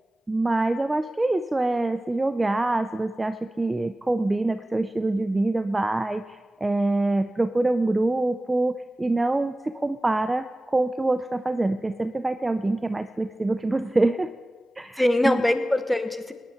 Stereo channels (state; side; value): normal; both; correlation 0.97